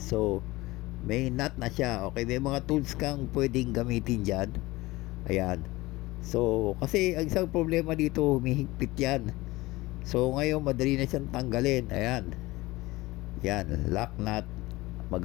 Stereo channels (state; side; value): quieter; right; 20.0 dB